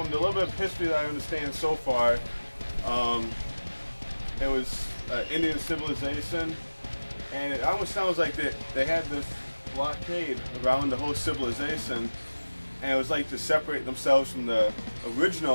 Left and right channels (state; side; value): inverted; both; correlation -1.00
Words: the little bit of history that I understand so far, it was Indian civilization. And it almost sounds like they had this blockade around the whole civilization, and it was like to separate themselves from the